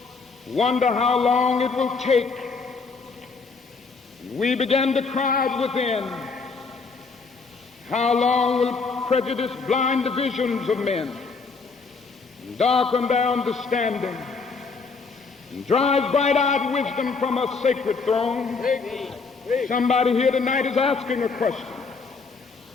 wonder how long it will take. We began to cry within, how long will prejudice blind the visions of men, and darken their understanding, and drive bright-eyed wisdom from her sacred throne? Somebody here tonight is asking a question.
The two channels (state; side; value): quieter; right; 4.6 dB